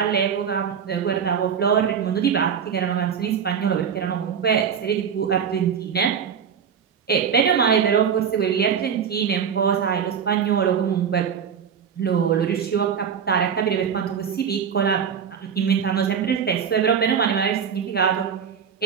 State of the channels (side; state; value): left; quieter; 7.4 dB